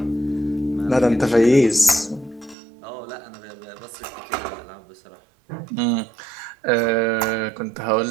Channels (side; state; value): left; drops out; at 2.6 s